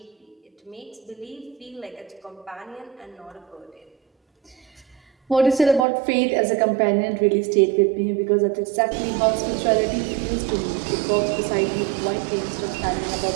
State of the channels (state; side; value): drops out; left; at 5.9 s